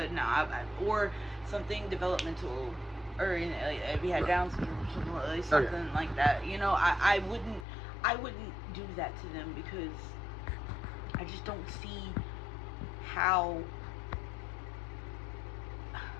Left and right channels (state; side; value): drops out; right; at 7.7 s